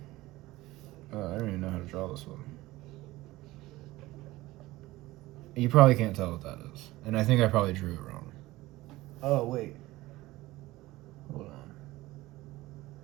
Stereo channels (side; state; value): left; quieter; 18.4 dB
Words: I don't even know how to draw this one. You probably can't tell what that is. And I think I probably drew it wrong. Oh, wait. Hold on.